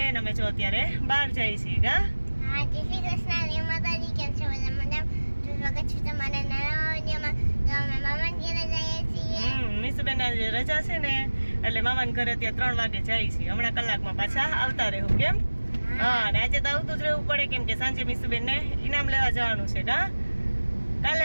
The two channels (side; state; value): both; inverted; correlation -1.00